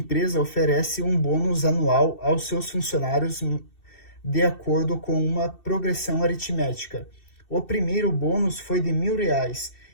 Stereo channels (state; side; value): late; right; 2.7 ms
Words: oferece um bônus anual aos seus funcionários de acordo com uma progressão aritmética. O primeiro bônus foi de R$ 1.000